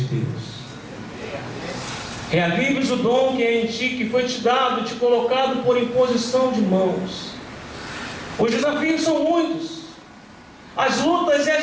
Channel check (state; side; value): identical; both; correlation 1.00